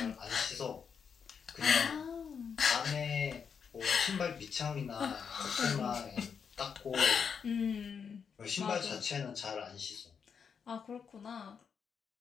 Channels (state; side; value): quieter; right; 6.6 dB